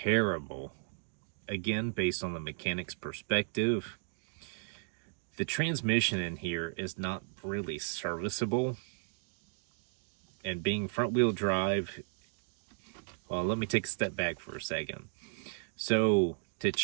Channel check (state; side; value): silent; left; digital silence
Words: Again, based on the mechanic's perspective, the transmission in here is not really serviceable. And being front wheel drive, well, let me take a step back for a second. So to